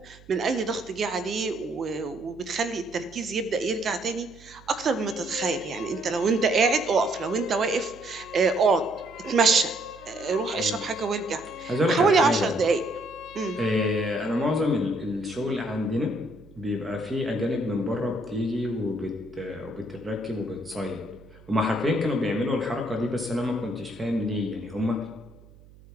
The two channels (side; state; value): right; noise; hum, 23 dB below the sound